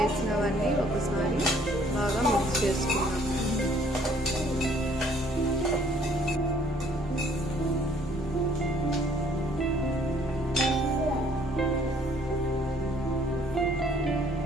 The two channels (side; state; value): both; normal; correlation 0.60